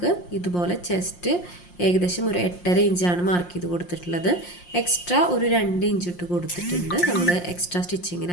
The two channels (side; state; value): right; late; 5.7 ms